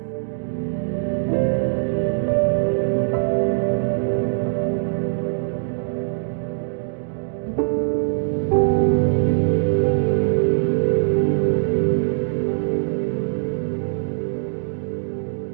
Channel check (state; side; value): silent; left; digital silence